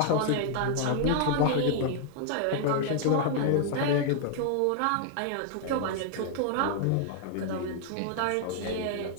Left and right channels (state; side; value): different; both; correlation 0.00